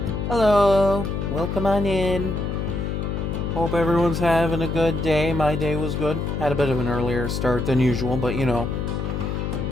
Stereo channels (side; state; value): left; noise; hum, 2 dB below the sound